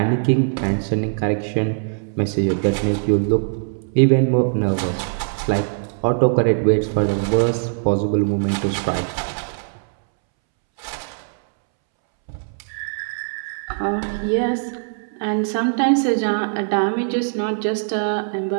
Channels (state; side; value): silent; left; 65 dB below the other